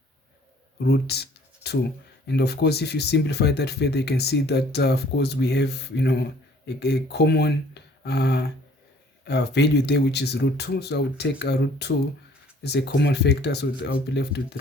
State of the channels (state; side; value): normal; both; correlation 0.56